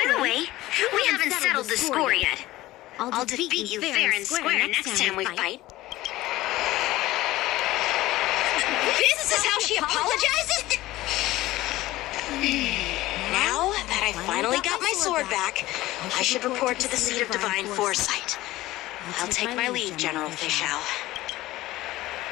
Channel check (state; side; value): quieter; right; 17.1 dB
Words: the way, we haven't settled the score yet. I'll defeat you fair and square next time we fight. This is how she apologizes? Now that I finally got my sword back, I should report to the seat of divine foresight. I'll take my leave, General Fei Xiao.